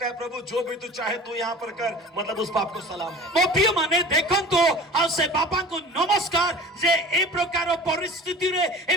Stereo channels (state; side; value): normal; both; correlation 0.40